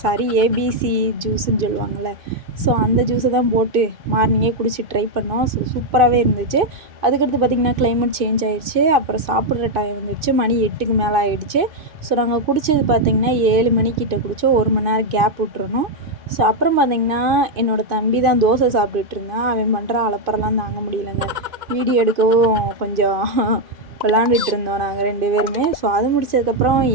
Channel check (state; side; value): late; left; 2.5 ms